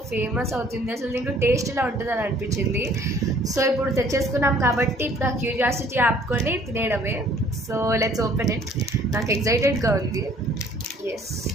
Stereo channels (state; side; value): normal; both; correlation 0.57